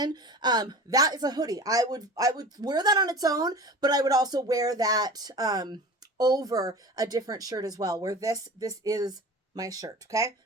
that is a hoodie. I would wear that on its own, but I would also wear that over a different shirt as well, where this is my shirt. Okay.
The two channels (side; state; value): both; normal; correlation 0.36